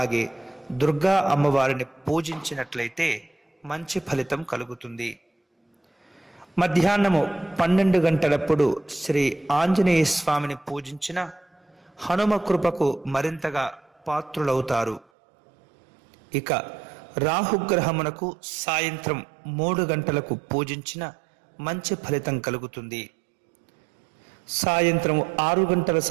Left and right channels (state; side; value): drops out; left; at 15.1 s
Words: దుర్గా అమ్మవారిని పూజించినట్లయితే మంచి ఫలితం కలుగుతుంది. మధ్యాహ్నము 12 గంటలప్పుడు శ్రీ ఆంజనేయ స్వామిని పూజించిన హనుమ కృపకు మరింతగా పాత్రులవుతారు. ఇక రాహుగ్రహమునకు సాయంత్రం 3 గంటలకు పూజించిన మంచి ఫలితం కలుగుతుంది. సాయంత్రం 6 గంటల